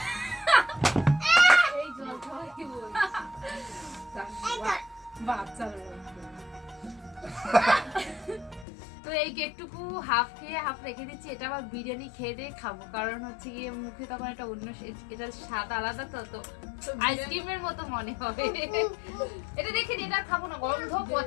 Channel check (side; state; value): right; drops out; at 8.7 s